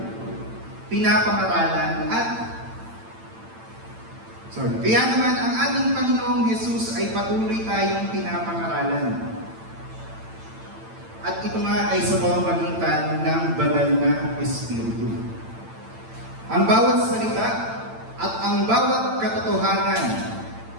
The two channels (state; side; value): late; left; 8.9 ms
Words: pinapangaralan Kaya naman, ang ating Panginoong Hesus ay patuloy tayong pinapangaralan. At ito nga ay sa pamamagitan ng banal na Espiritu. Ang bawat salita at ang bawat katotohanan